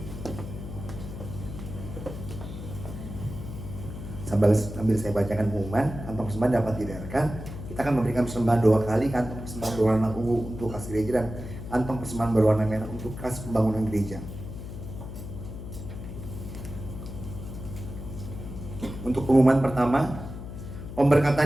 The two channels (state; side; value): noise; left; hum, 10 dB below the sound